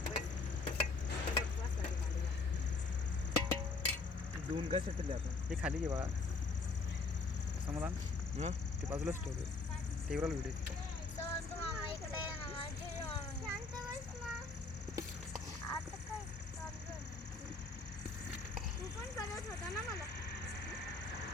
दोन काय सेटल आता. हे खाली घे बघा. समाधान ते बाजूलाच ठेवले. टीव्हीला व्हिडिओ.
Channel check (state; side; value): quieter; right; 3.9 dB